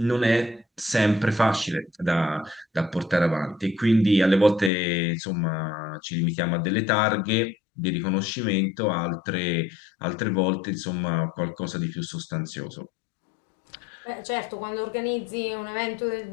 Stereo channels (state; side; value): drops out; right; at 4.7 s